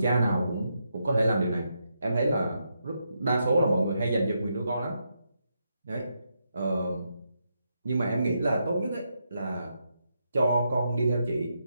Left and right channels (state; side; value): inverted; both; correlation -0.82